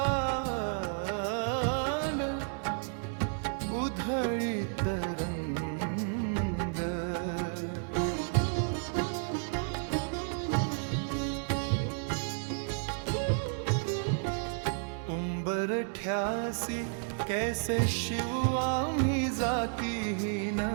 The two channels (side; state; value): left; silent; 56 dB below the other